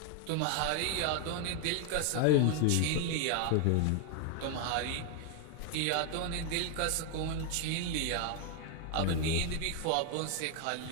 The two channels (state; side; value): different; both; correlation 0.00